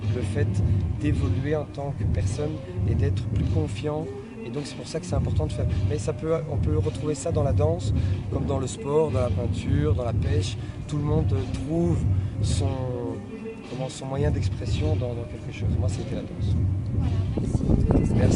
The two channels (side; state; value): both; identical; correlation 1.00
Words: le fait d'évoluer en tant que personne et d'être plus confiant. Et donc c'est pour ça que c'est important de faire. Mais on peut retrouver ça dans la danse, comme dans le sport, dans la peinture, dans la pêche. Tout le monde trouve son moyen d'expression dans quelque chose. Moi, c'était la danse. Voilà, merci.